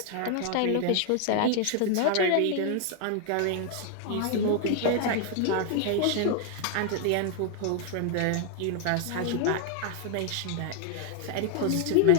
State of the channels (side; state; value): both; different; correlation 0.00